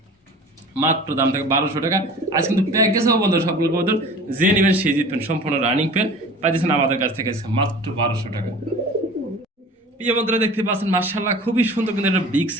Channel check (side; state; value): both; normal; correlation 0.41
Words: মাত্র দাম থাকে 1200 টাকা। আজ কিন্তু প্যাকেজ হবে বন্ধুরা সবগুলো কবুতর, যে নেবেন সে জিতবেন, সম্পূর্ণ রানিং পেয়ার পাইতেছেন আমাদের কাছ থেকে মাত্র 1200 টাকা। প্রিয় বন্ধুরা দেখতে পাচ্ছেন মাশাআল্লাহ খুবই সুন্দর কিন্তু একটা বিগ